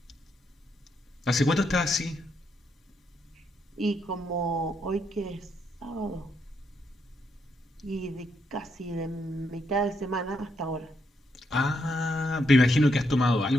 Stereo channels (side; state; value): both; normal; correlation 0.78